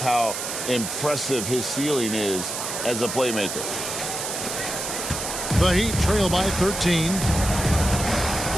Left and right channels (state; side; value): noise; right; hiss, 5 dB below the sound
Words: impressive his ceiling is as a playmaker. The Heat trail by 13.